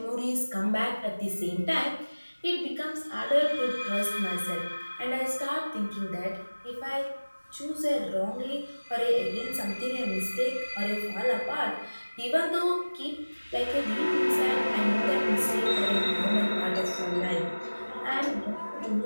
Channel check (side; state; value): both; inverted; correlation -1.00